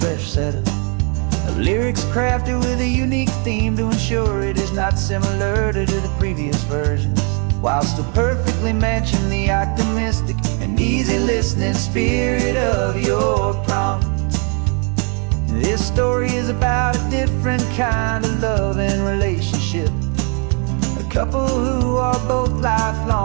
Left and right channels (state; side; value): quieter; left; 35.5 dB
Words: set of lyrics crafted with a unique theme to ensure it is not similar to the previous versions. while still perfectly matching the optimistic and easy listening spirit of your prompt. This story is about a different kind of love and relationship. A couple who are both